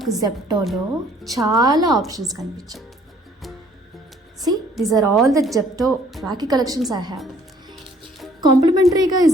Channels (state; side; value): normal; both; correlation 0.59